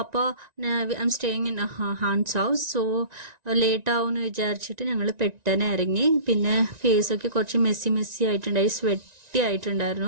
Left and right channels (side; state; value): left; late; 1.9 ms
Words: അപ്പോൾ I am staying in Hans house. So late ആവും എന്ന് വിചാരിച്ചിട്ട് ഞങ്ങൾ പെട്ടെന്ന് ഇറങ്ങി. പിന്നെ ഫേസൊക്കെ കുറച്ച് മെസ്സി ആയിട്ടുണ്ടായി,